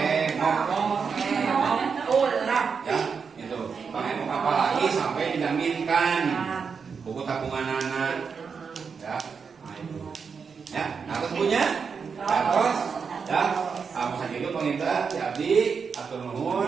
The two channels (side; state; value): left; quieter; 5.8 dB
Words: ya, itu. Apalagi sampai dijaminkan buku tabungan anak, ya. Ya, nah terus punya, ya terus, ya, apa saja itu penginta, ya abdi, atur